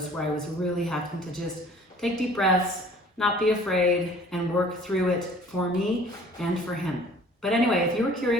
where I was really having to just take deep breaths, not be afraid, and work through it for me and for him. But anyway, if you were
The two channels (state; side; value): normal; both; correlation 0.51